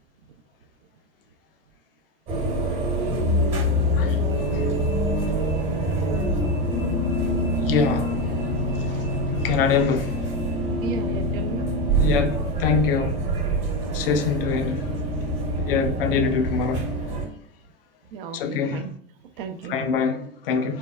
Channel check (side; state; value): both; normal; correlation 0.14